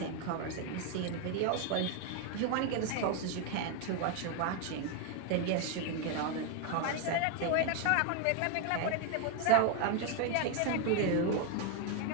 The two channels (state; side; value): different; both; correlation 0.01